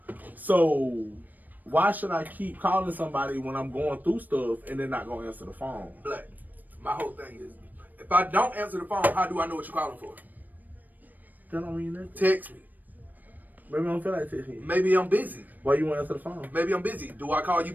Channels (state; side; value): late; left; 0.085 ms